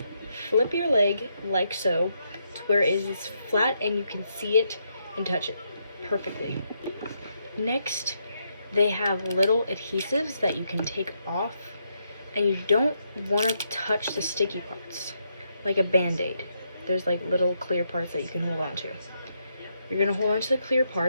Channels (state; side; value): inverted; both; correlation -0.79